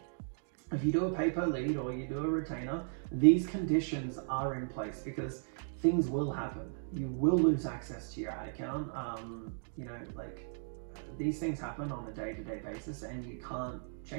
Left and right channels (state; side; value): silent; left; digital silence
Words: if you do a pay-per lead or you do a retainer, these conditions are in place because things will happen. You will lose access to your ad account. These things happen on a day-to-day basis and you can't